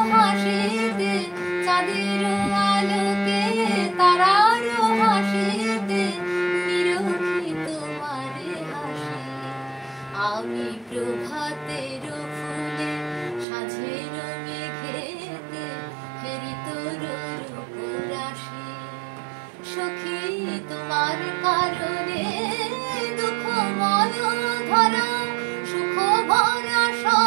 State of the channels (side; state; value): left; drops out; at 13.5 s